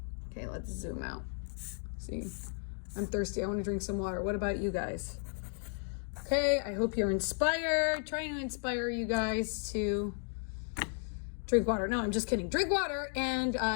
Okay, let's zoom out. See, I'm thirsty. I want to drink some water. What about you guys? Okay, I hope you're inspired. Trying to inspire you guys to drink water. No, I'm just kidding. Drink water and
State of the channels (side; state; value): right; silent; 55 dB below the other